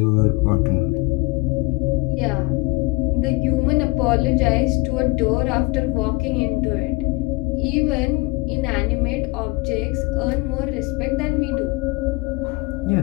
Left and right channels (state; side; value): quieter; right; 24.3 dB